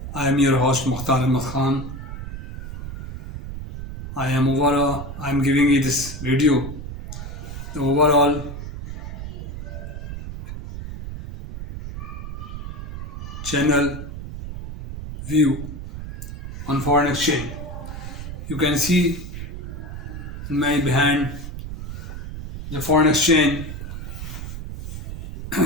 I am your host Mukhtar Ahmed Khan. I am giving you this video. The overall channel view on foreign exchange. You can see in my behind the foreign exchange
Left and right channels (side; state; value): right; noise; rumble, 8 dB below the sound